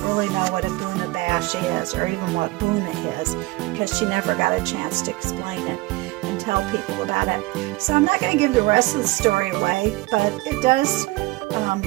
really know what a Buna Bash is, or even what Buna is, because she never got a chance to explain it and tell people about it. So I'm not going to give the rest of the story away, but it does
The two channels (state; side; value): quieter; left; 21.0 dB